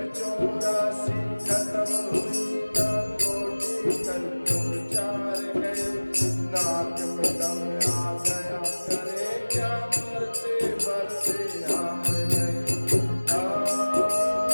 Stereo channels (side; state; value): both; inverted; correlation -1.00